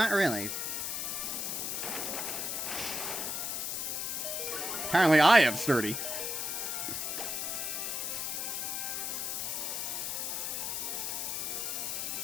really. Apparently I have sturdy.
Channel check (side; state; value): left; noise; hiss, 1 dB below the sound